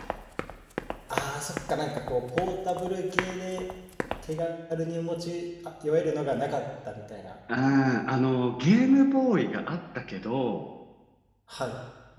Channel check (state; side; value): identical; both; correlation 1.00